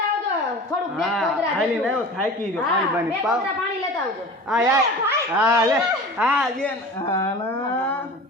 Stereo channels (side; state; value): both; normal; correlation 0.37